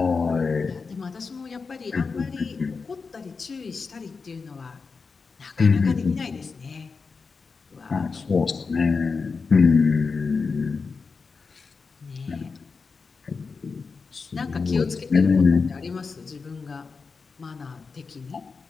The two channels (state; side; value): quieter; right; 4.8 dB